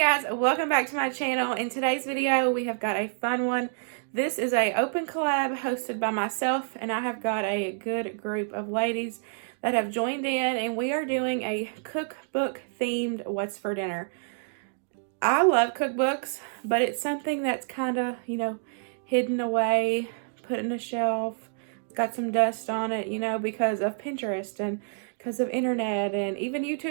welcome back to my channel. In today's video, we have got a fun one. This is a open collab hosted by myself, and I have got a good group of ladies that have joined in, and we are doing a cookbook themed What's for Dinner. I love cookbooks, but it's something that's kind of, hidden away, put in a shelf, got some dust on it, because of Pinterest and because of internet and even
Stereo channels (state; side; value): silent; left; digital silence